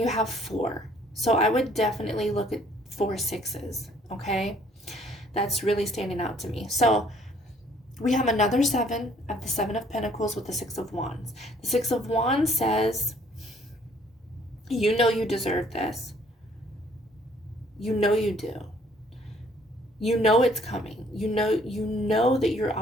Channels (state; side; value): normal; both; correlation 0.61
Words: have 4. So I would definitely look at 4 6s, okay? That's really standing out to me. So we have another 7 of the 7 of Pentacles with the 6 of Wands. The 6 of Wands says, you know you deserve this. You know you do. You know it's coming. You know that you're